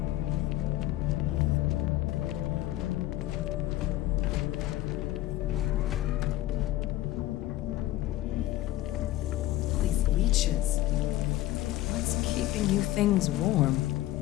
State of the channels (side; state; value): right; quieter; 15.3 dB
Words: These leeches. What's keeping you things warm?